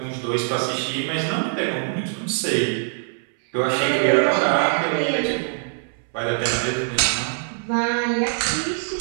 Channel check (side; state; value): left; silent; 63 dB below the other